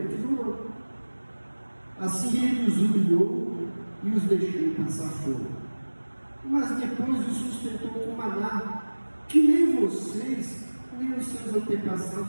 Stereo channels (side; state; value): both; inverted; correlation -1.00